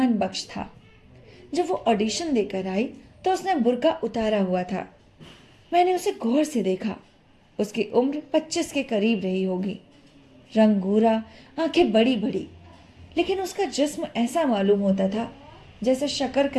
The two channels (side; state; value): both; identical; correlation 1.00